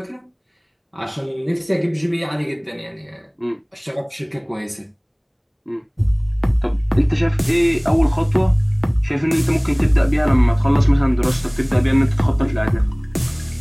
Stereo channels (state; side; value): identical; both; correlation 1.00